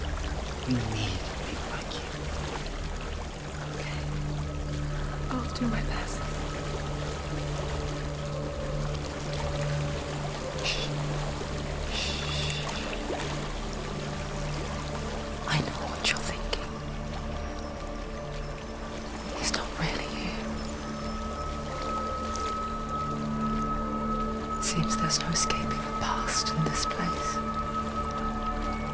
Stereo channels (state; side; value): identical; both; correlation 1.00